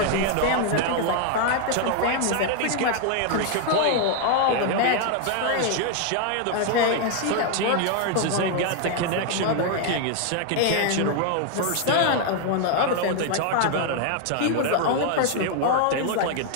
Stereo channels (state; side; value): different; both; correlation 0.00